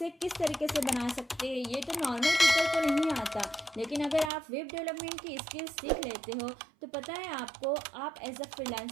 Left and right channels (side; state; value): left; drops out; at 4.3 s